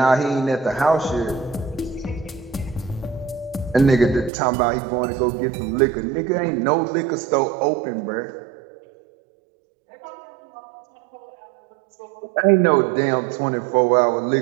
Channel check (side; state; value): left; drops out; at 4.3 s